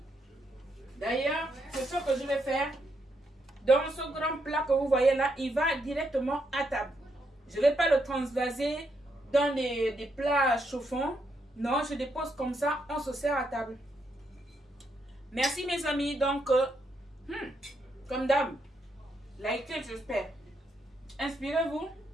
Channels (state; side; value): normal; both; correlation 0.79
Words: D'ailleurs, c'est ce que je vais faire. Dans ce grand plat que vous voyez là, il va directement à table. Je ne vais pas le transvaser dans des plats chauffants. Non, je dépose comme ça, on se sert à table. Merci mes amis, donc, comme d'hab, likez, j'espère. Inspirez-vous,